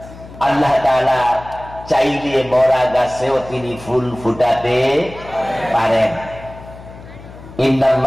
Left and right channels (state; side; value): noise; left; hum, 17 dB below the sound